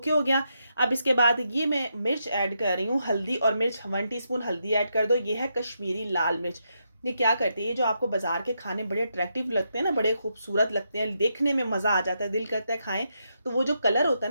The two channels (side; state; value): both; inverted; correlation -0.82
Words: हो गया। अब इसके बाद ये मैं मिर्च ऐड कर रही हूँ, हल्दी और मिर्च, 1 टीस्पून हल्दी ऐड कर दो। ये है कश्मीरी लाल मिर्च, ये क्या करती है, ये जो आपको बाज़ार के खाने बड़े अट्रैक्टिव लगते हैं ना, बड़े खूबसूरत लगते हैं, देखने में मज़ा आ जाता है, दिल करता है खाएँ, तो वो जो कलर होता